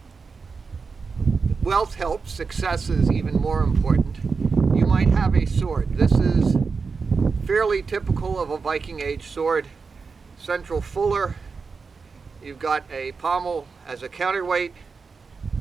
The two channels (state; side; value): quieter; left; 4.9 dB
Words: wealth helps. Success is even more important. You might have a sword. This is fairly typical of a Viking Age sword. Central fuller. You've got a pommel as a counterweight.